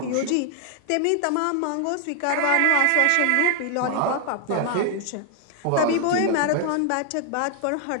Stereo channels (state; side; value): different; both; correlation 0.00